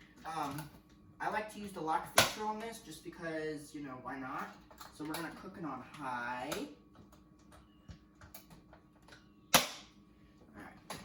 I like to use the lock feature on this just because, you know, why not? So we're going to cook it on high. Alright,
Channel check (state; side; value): identical; both; correlation 1.00